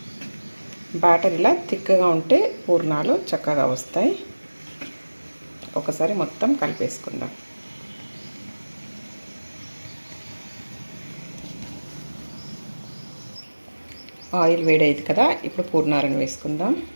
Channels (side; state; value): both; inverted; correlation -1.00